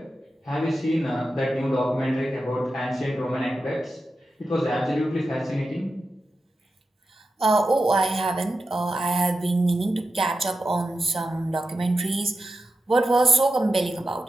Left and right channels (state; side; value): normal; both; correlation 0.90